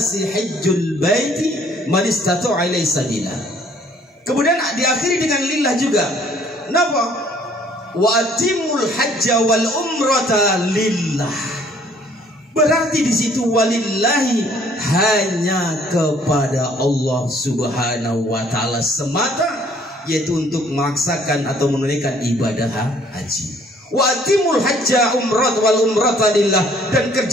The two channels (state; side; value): normal; both; correlation 0.60